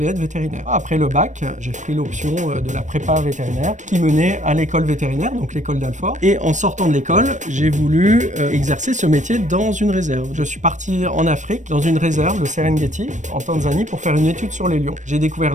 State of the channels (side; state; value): left; late; 0.35 ms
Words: être vétérinaire. Après le bac, j'ai pris l'option de la prépa vétérinaire qui menait à l'école vétérinaire, donc l'école d'Alfort. Et en sortant de l'école, j'ai voulu exercer ce métier dans une réserve. Je suis parti en Afrique, dans une réserve, le Serengeti, en Tanzanie, pour faire une étude sur les lions. J'ai découvert